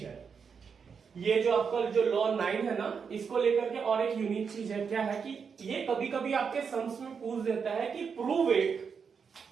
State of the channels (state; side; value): quieter; left; 6.1 dB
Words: है, ये जो आपका जो लॉ 9 है ना, इसको लेकर के और एक यूनिक चीज है। क्या है कि ये कभी कभी आपके सम्स में पूछ देता है कि प्रूव इट,